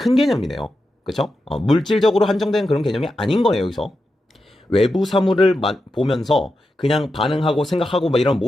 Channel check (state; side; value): normal; both; correlation 0.89